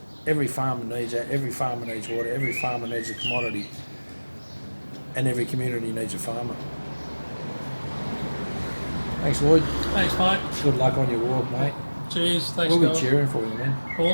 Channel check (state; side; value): inverted; both; correlation -1.00